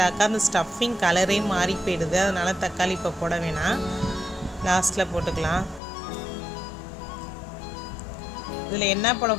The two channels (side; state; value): right; drops out; at 5.8 s